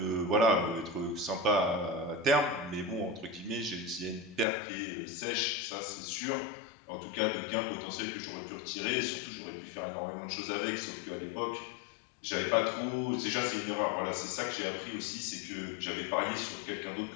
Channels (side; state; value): right; drops out; at 4.5 s